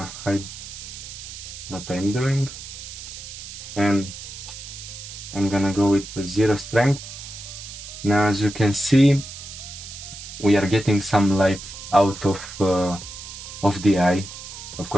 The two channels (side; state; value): right; noise; hiss, 12 dB below the sound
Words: hide what I'm doing, and I'm gonna go with 0 strength. Now, as you can see, we are getting some light out of the eye. Of